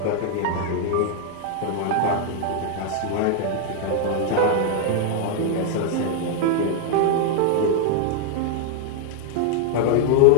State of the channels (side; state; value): both; different; correlation 0.00